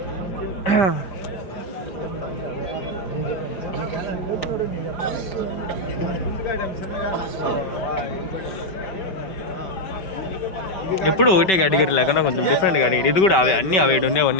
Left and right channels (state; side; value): late; right; 5.2 ms